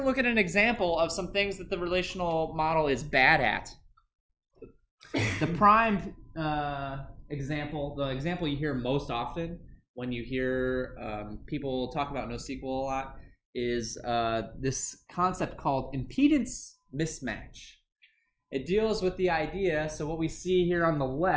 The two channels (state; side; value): identical; both; correlation 1.00